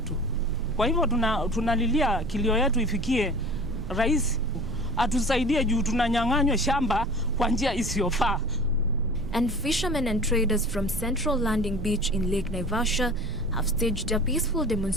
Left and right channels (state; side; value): noise; right; rumble, 7 dB below the sound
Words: Kwa hivyo tunalilia kilio yetu ifikie rais atusaidie juu tunanyang'anywa shamba kwa njia isiyofaa. And fishermen and traders from Central Landing Beach in Lake Naivasha have staged a peaceful